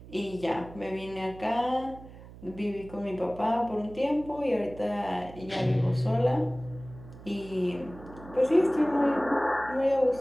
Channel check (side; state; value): right; noise; hum, 17 dB below the sound